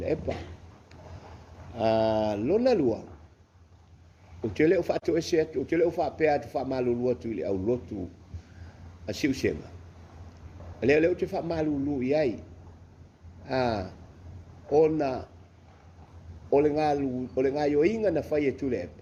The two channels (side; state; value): both; identical; correlation 1.00